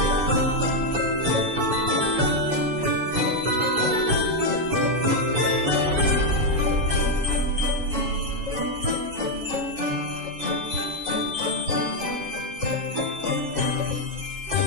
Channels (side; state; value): left; late; 7.2 ms